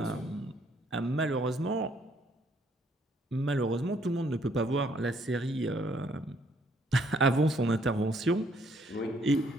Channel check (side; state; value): both; normal; correlation 0.67